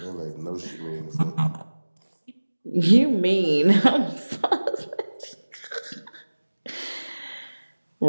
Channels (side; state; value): both; inverted; correlation -1.00